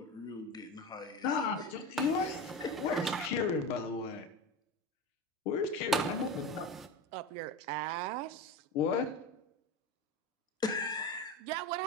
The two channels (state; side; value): normal; both; correlation 0.26